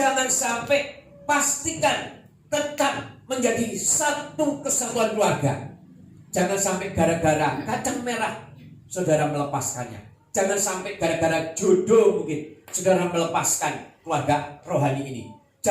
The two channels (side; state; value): both; identical; correlation 1.00